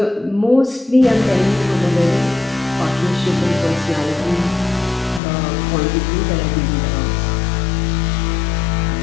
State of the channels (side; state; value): right; drops out; at 5.2 s